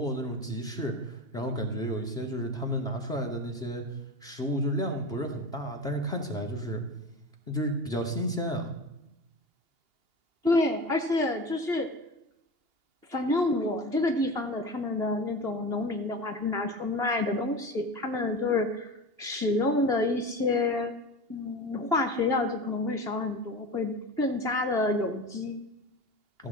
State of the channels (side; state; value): left; late; 2.8 ms